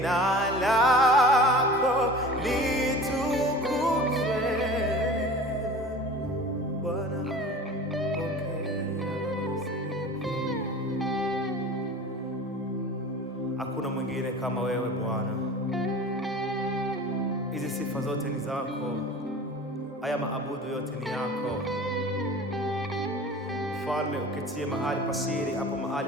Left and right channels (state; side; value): normal; both; correlation 0.39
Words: lako litukuzwe. Bwana, pokea sifa. Hakuna mwingine kama wewe Bwana. Hizi sifa zote ni zako. Haya maabudu yote ni yako. Mfalme, uketie mahali pasiri, hapo